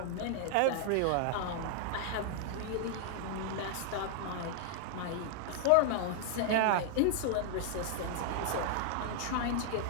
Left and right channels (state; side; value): different; both; correlation -0.01